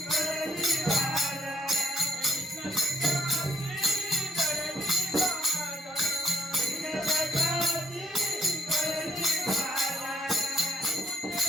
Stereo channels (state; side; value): normal; both; correlation 0.68